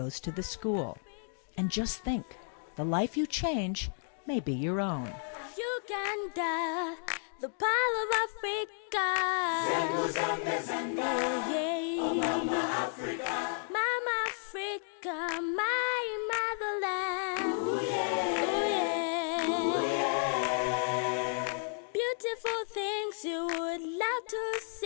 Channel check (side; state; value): right; silent; 56 dB below the other